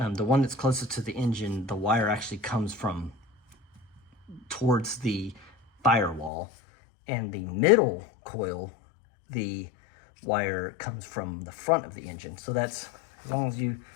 one that's closest to the engine, the wire actually comes from towards the firewall, and the middle coil, the wire comes from the front of the engine. So that's, as long as you,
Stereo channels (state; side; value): drops out; right; at 6.3 s